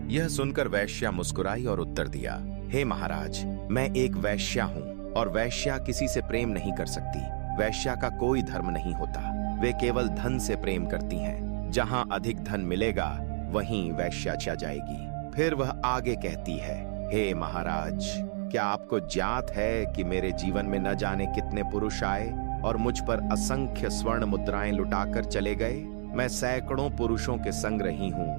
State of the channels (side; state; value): left; silent; digital silence